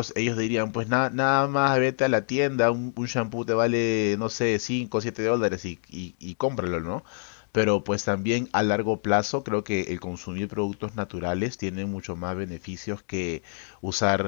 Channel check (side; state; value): right; silent; digital silence